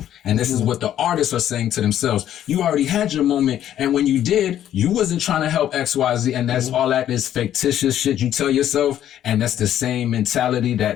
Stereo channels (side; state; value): right; quieter; 11.2 dB